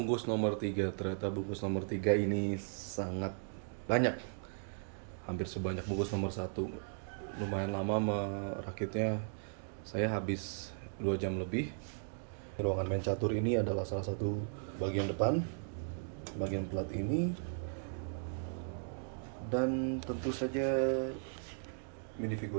nomor 3. Ternyata bungkus nomor 3 ini sangat banyak. Hampir sebanyak bungkus nomor 1. Lumayan lama merakitnya. Saya habis 2 jam lebih. Ruangan main catur ini adalah salah satu bagian depan. Bagian plat ini. Dan tentu saja minifigur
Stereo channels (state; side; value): silent; left; digital silence